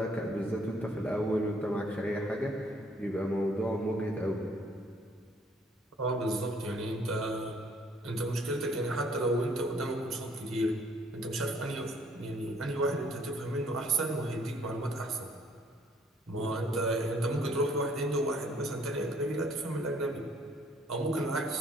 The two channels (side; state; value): both; normal; correlation 0.62